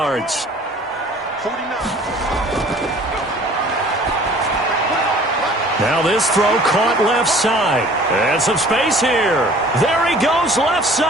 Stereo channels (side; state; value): both; normal; correlation 0.50